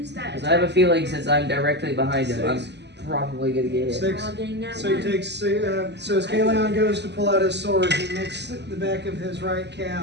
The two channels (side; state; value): left; late; 0.50 ms